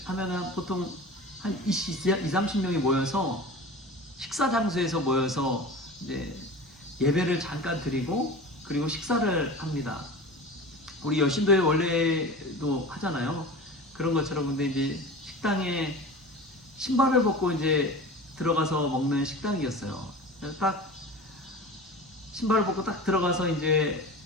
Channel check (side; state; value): both; normal; correlation 0.34